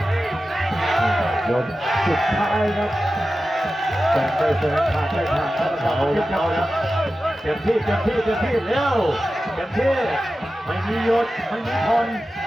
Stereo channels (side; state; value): both; normal; correlation 0.93